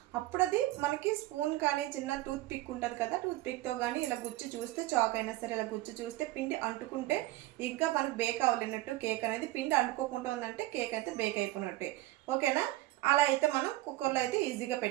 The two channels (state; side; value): quieter; left; 17.3 dB